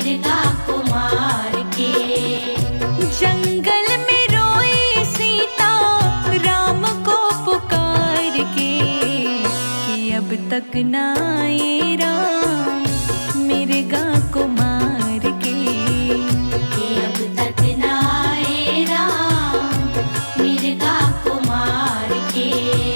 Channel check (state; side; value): inverted; both; correlation -1.00